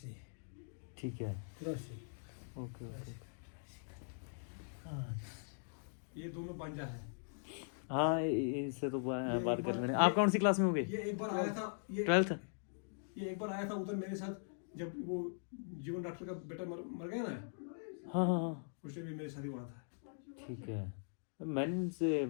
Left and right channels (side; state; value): right; silent; digital silence